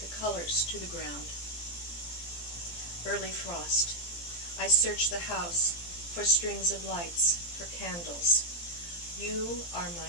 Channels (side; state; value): right; late; 17 ms